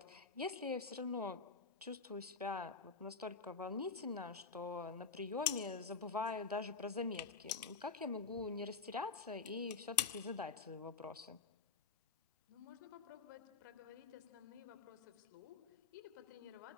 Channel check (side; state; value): right; quieter; 4.9 dB